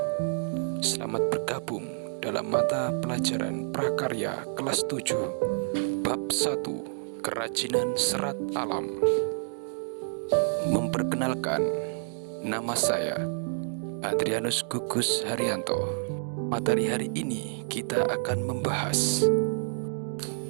Selamat bergabung dalam mata pelajaran prakarya kelas 7 Bab 1 Kerajinan Serat Alam. Memperkenalkan, nama saya Adrianus Gugus Haryanto. Materi hari ini kita akan membahas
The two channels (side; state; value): left; silent; digital silence